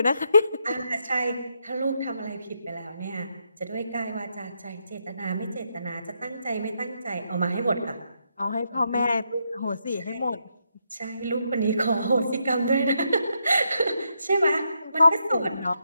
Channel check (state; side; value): inverted; both; correlation -0.80